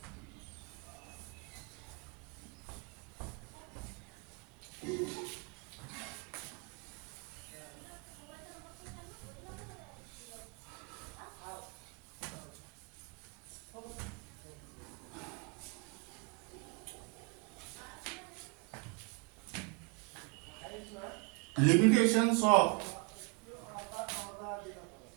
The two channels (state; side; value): quieter; left; 30.4 dB